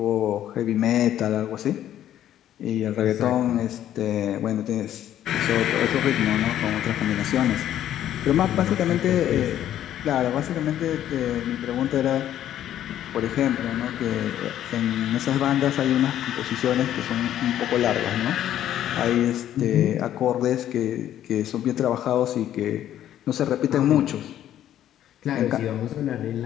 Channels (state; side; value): quieter; right; 11.5 dB